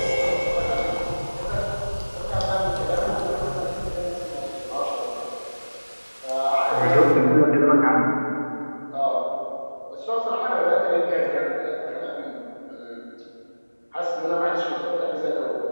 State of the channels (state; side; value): inverted; both; correlation -1.00